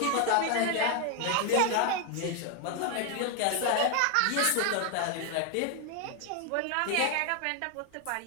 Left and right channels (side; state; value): both; different; correlation 0.01